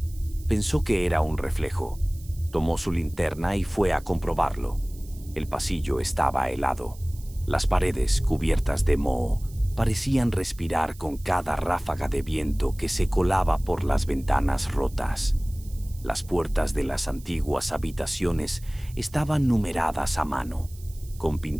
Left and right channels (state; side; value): noise; right; hiss, 22 dB below the sound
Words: Pensó que era un reflejo. Tomó su linterna y fue a comprobarlo. El pasillo estaba helado. Las paredes, cubiertas de moho, parecían respirar con cada ráfaga de viento que se colaba por las ventanas rotas. Las puertas de las antiguas habitaciones estaban numeradas a mano, con